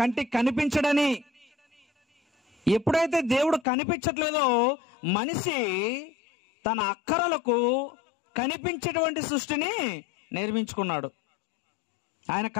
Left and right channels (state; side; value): drops out; right; at 3.7 s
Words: కనిపించడని. ఎప్పుడైతే దేవుడు కనిపించట్లేదో మనిషి తన అక్కరలకు కనిపించేటువంటి సృష్టిని నిర్మించుకున్నాడు. ఆయన